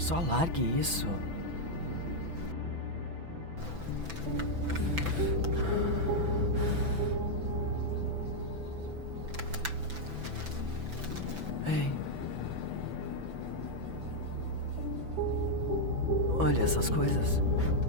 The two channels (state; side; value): late; left; 6.0 ms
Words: largue isso. Ei. Olha essas coisas.